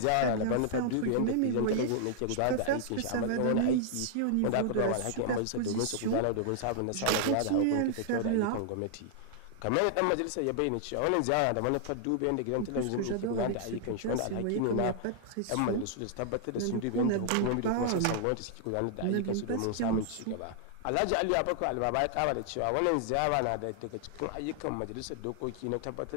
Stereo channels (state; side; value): different; both; correlation -0.01